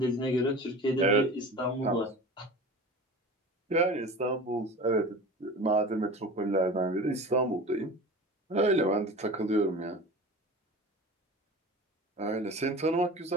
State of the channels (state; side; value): normal; both; correlation 0.35